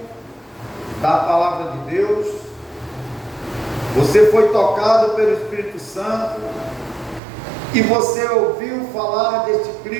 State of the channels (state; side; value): drops out; left; at 7.2 s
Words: da palavra de Deus, você foi tocado pelo Espírito Santo, e você ouviu falar deste